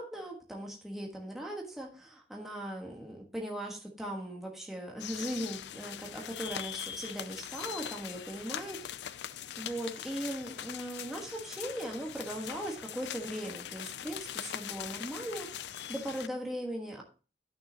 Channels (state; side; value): normal; both; correlation 0.59